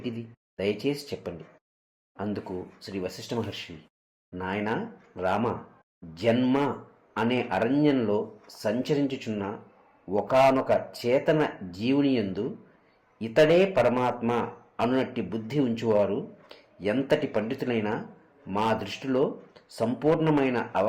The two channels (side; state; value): both; identical; correlation 1.00